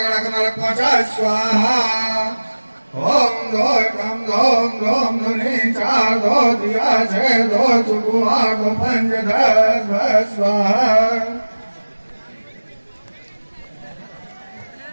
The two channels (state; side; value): inverted; both; correlation -1.00